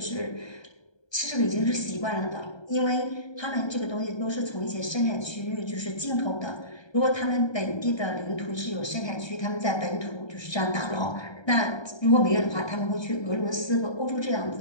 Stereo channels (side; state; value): right; late; 1.3 ms